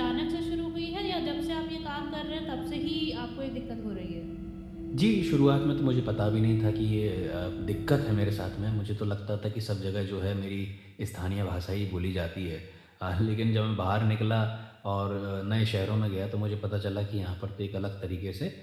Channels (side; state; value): both; identical; correlation 1.00